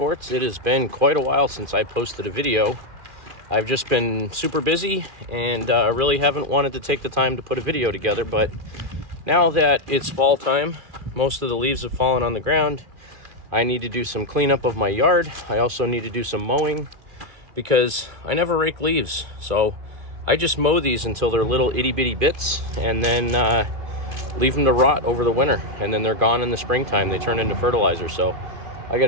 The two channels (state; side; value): late; left; 2.4 ms